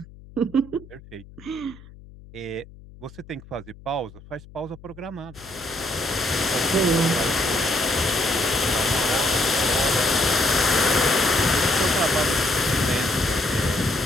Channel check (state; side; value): noise; left; hum, 20 dB below the sound